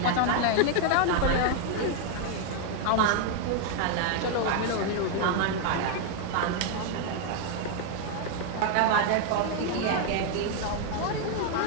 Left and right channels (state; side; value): different; both; correlation 0.01